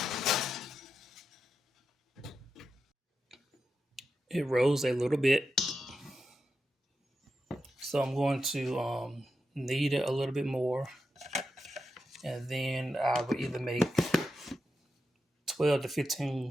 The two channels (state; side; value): normal; both; correlation 0.88